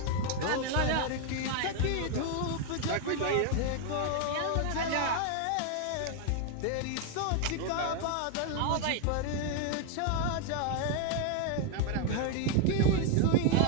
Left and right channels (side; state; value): both; different; correlation 0.00